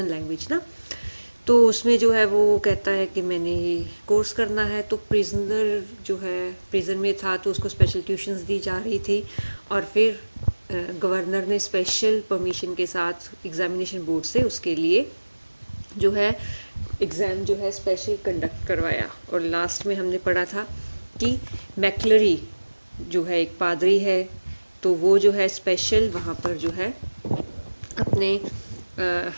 language ना. तो उसमें जो है वो कहता है कि मैंने ये कोर्स करना है। तो प्रिजनर जो है प्रिजन में था तो उसको स्पेशल ट्यूशन्स दी जा रही थी, और फिर गवर्नर ने स्पेशल परमिशन के साथ एग्जामिनेशन बोर्ड से उसके लिए जो है एग्ज़ाम जो है स्पेशल कंडक्ट करवाया। और लास्ट में हमने पढ़ा था कि मैक्लरी जो है एक पादरी है, तो वो जो है स्पेशल वहाँ पर जो है अपने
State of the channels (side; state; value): both; inverted; correlation -1.00